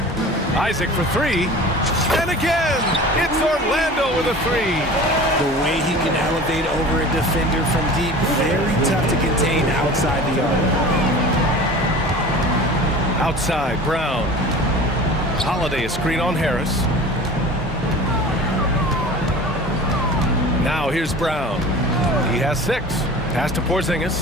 Isaac for three. And again, it's Orlando with a three. The way he can elevate over a defender from deep, very tough to contain outside the arc. Outside, Brown. Holiday a screen on Harris. Now here's Brown. He has 6. Pass to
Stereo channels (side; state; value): both; normal; correlation 0.39